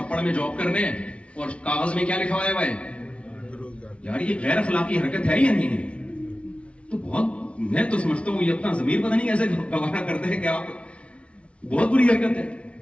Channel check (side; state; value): right; late; 0.061 ms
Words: میں جاب کرنے, اور کاغذ میں کیا لکھا ہوا ہے یار یہ غیر اخلاقی حرکت ہے یا نہیں ہے؟ تو بہت, میں تو سمجھتا ہوں یہ اپنا ضمیر پتہ نہیں کیسے گوارا کرتے ہیں کہ آپ, بہت بری حرکت ہے.